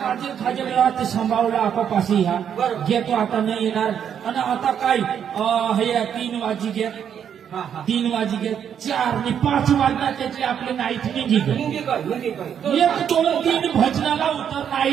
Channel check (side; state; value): left; quieter; 8.5 dB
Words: खाद्य सांभाळला आपापाशी ह्या घेतो आता नाही येणार आणि आता काय हे 3 वाजी घ्या 3 वाजी घ्या 4 आणि 5 वाजता त्याची आपली नाईट निघी 1 2 3 भजनाला उतर